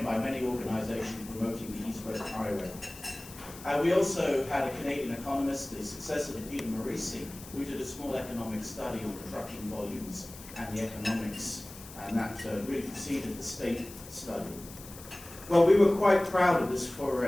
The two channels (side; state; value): left; noise; hiss, 16 dB below the sound